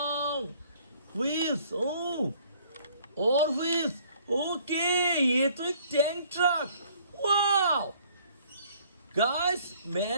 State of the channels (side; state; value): both; inverted; correlation -0.59